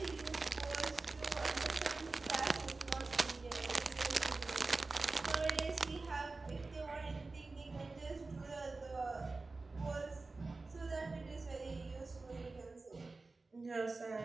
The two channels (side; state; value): left; quieter; 3.6 dB